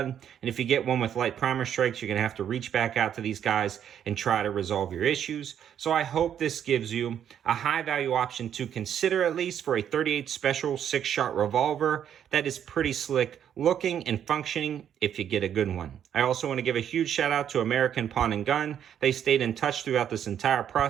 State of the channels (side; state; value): left; quieter; 9.3 dB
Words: And if you get one with light primer strikes, you're going to have to reach back out to these guys and try to resolve your issues. So I hope this gives you a high value option to consider, at least for a 38 special 6-shot revolver that is pretty slick looking and functioning if you get a good one. I also want to give a huge shout out to American Pawn and Gun. They stayed in touch throughout this entire